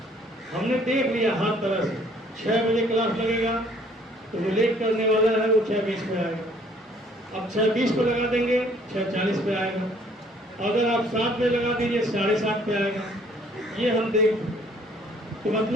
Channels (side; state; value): both; normal; correlation 0.60